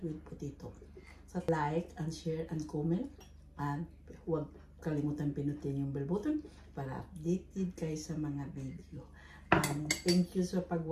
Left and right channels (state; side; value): identical; both; correlation 1.00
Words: with potato. So like and share and comment. And huwag kalimutan pinutin yung bell button para updated kayo sa mga video. And thank you sa